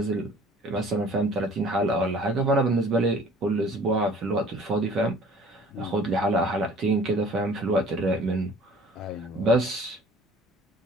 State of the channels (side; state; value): both; normal; correlation 0.50